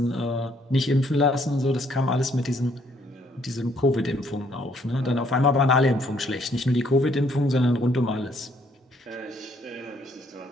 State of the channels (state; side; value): normal; both; correlation 0.67